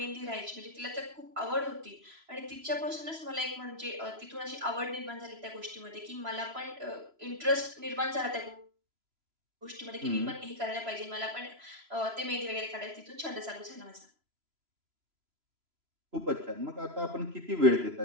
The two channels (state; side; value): late; left; 3.0 ms